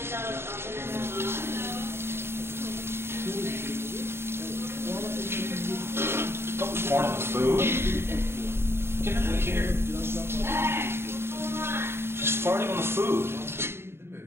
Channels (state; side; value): late; left; 0.12 ms